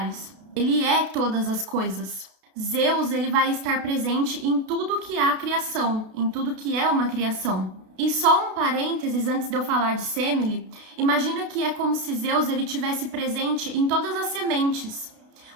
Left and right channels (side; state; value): left; late; 32 ms